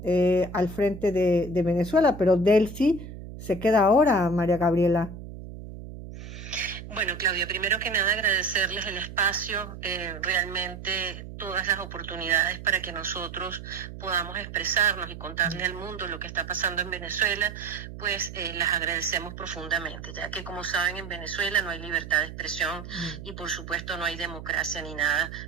al frente de Venezuela, pero Delcy se queda ahora, María Gabriela. Bueno, Claudia, primero que nada agradecerles el espacio, realmente todas las oportunidades para que nosotros podamos expresarnos y contarle al mundo lo que está pasando en Venezuela, pues las agradecemos profundamente, ya que como saben en Venezuela no hay libertad de expresión y por supuesto no hay democracia ni nada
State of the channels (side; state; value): right; noise; hum, 12 dB below the sound